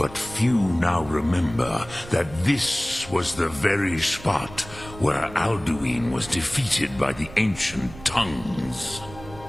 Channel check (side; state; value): right; noise; rumble, 16 dB below the sound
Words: few now remember that this was the very spot where Alduin was defeated by the ancient tongues.